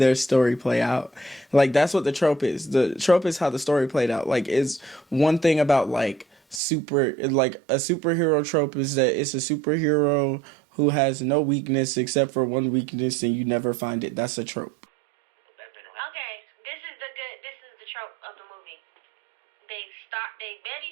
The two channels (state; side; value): drops out; left; at 6.6 s